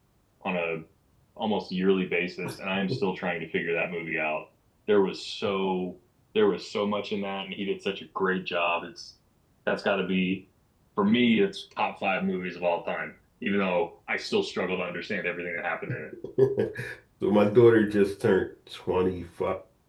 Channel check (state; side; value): identical; both; correlation 1.00